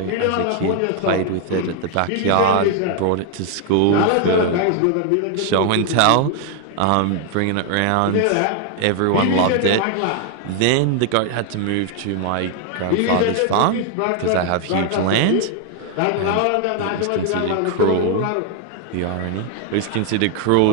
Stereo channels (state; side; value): different; both; correlation 0.00